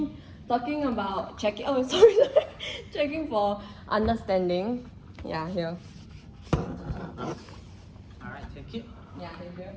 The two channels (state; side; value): identical; both; correlation 1.00